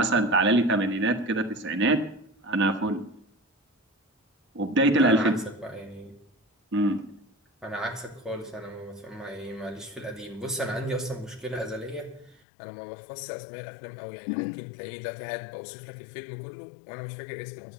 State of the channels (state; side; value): drops out; right; at 12.4 s